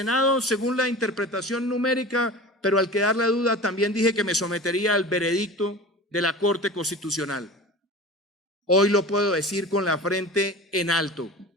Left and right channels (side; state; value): both; normal; correlation 0.35